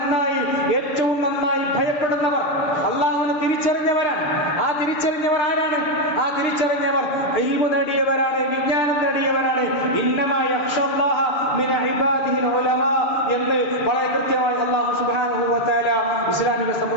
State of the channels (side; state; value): right; late; 6.9 ms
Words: ഏറ്റവും നന്നായി ഭയപ്പെടുന്നവർ, അള്ളാഹുവിനെ തിരിച്ചറിഞ്ഞവരാണ്. ആ തിരിച്ചറിഞ്ഞവർ ആരാണ്? ആ തിരിച്ചറിഞ്ഞവർ ഇൽമു നേടിയവരാണ്, വിജ്ഞാനം നേടിയവരാണ്. ഇന്നമാ യഖ്ശല്ലാഹ മിൻ ഇബാദിഹിൽ ഉലമാ എന്ന് വളരെ കൃത്യമായി അല്ലാഹു സുബ്ഹാനഹു വ തആല ഇസ്ലാമിക